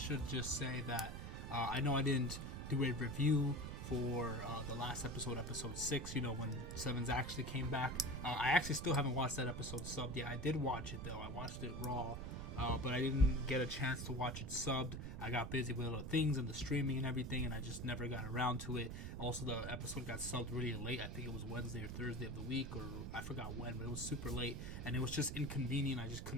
just say that I know I didn't do a review for the last episode, episode 6, you know, when 7s actually came back. I actually still haven't watched that episode subbed yet. I did watch it though, I watched it raw. But I didn't get a chance to watch it subbed. I got busy with other things and the streaming and everything, and I just never got around to it. Also, the episode got subbed really late. I think it was Wednesday or Thursday of the week, or I forgot when, but it was super late, and it was just inconvenient. I just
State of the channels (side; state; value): right; noise; rumble, 6 dB below the sound